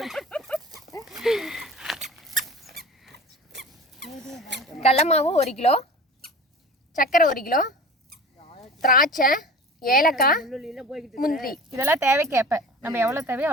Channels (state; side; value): normal; both; correlation 0.37